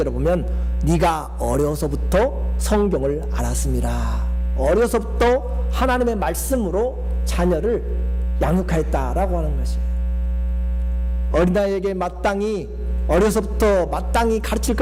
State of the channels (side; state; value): both; identical; correlation 1.00